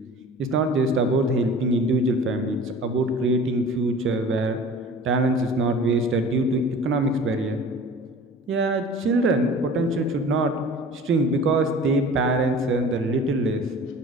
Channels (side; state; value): both; normal; correlation 0.42